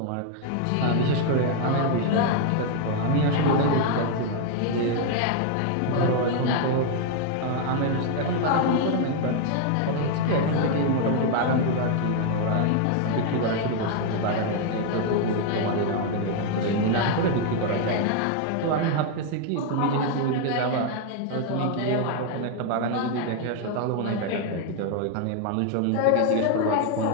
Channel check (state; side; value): different; both; correlation 0.00